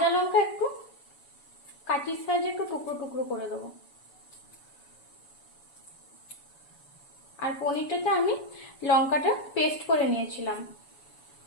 লঙ্কা একটু কাঠির সাহায্যে একটু টুকরো টুকরো করে দেবো। আর পনিরটাতে আমি লঙ্কাটা পেস্ট করে নিয়েছিলাম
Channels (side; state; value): right; late; 7.1 ms